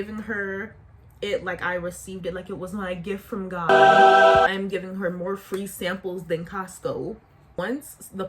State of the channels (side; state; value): both; identical; correlation 1.00